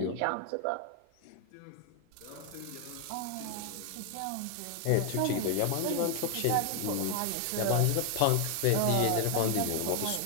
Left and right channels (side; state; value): both; different; correlation 0.00